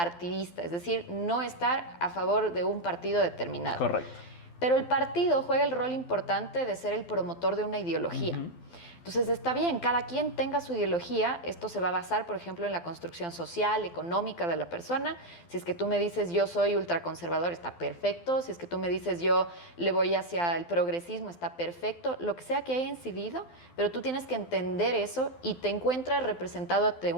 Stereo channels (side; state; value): right; late; 12 ms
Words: es decir, no estar a favor de un partido determinado. Correcto. Pero el partido juega el rol importante de ser el promotor de una ideología. Entonces está bien, cada quien tenga su ideología, esto se va a basar, por ejemplo, en la construcción social, económica de la persona. Si es que tú me dices yo soy ultraconservador, está perfecto. Si es que tú me dices yo le voy hacia el progresismo, está perfecto. Lo que sea que haya incidido, pero tú tienes que entender eso y te encuentras representado ante